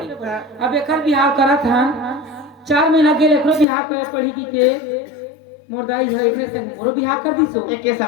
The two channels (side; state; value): right; drops out; at 3.7 s